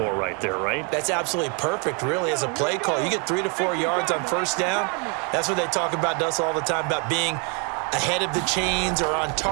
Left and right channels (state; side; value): quieter; left; 36.0 dB